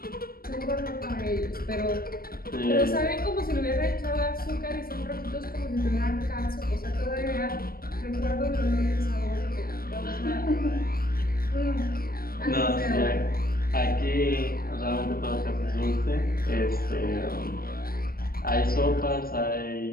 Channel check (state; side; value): late; right; 0.43 ms